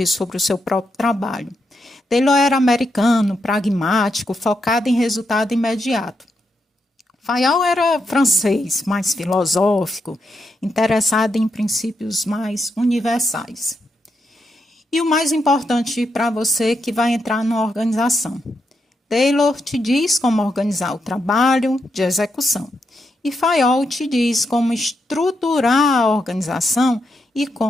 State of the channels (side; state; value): both; normal; correlation 0.82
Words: sobre o seu próprio trabalho. Taylor era americano, pragmático, focado em resultado imediato. Fayol era francês, mais filosófico, interessado em princípios mais universais. E o mais importante para você que vai entrar na organização. Taylor te diz como organizar o trabalho de execução e Fayol te diz como estruturar a organização e